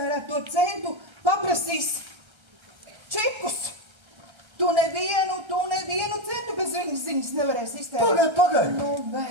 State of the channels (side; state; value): left; late; 1.3 ms